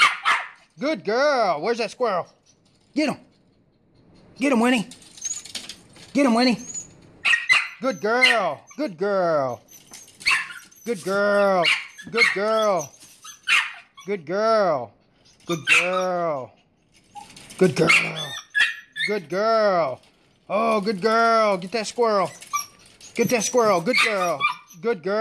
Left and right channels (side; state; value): both; identical; correlation 1.00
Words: Good girl. Where's that squirrel? Get him. Get him, Winnie. Get him, Winnie. Good girl. Good girl. Good girl. Good girl. Good girl. Good girl. Good girl. Good girl. Oh, good girl. Get that squirrel. Get that squirrel. Good girl. Good